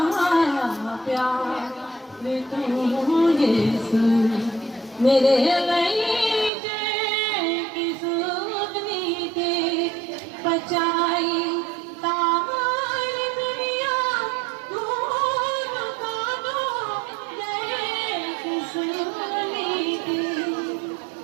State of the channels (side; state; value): left; drops out; at 6.5 s